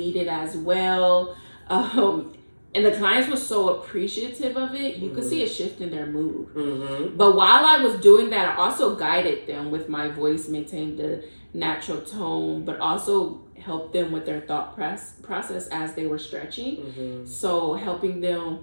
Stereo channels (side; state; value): both; inverted; correlation -1.00